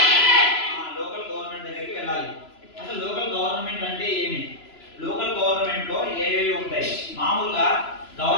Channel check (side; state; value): right; late; 3.0 ms